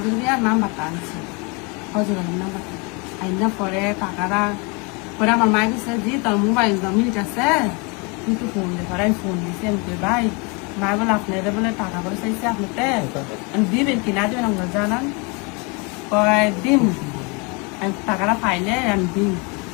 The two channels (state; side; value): quieter; right; 30.8 dB